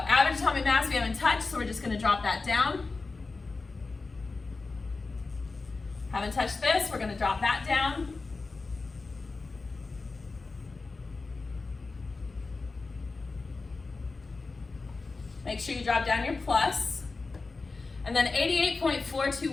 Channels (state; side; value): quieter; right; 3.9 dB